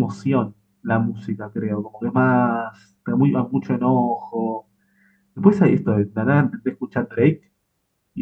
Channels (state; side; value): identical; both; correlation 1.00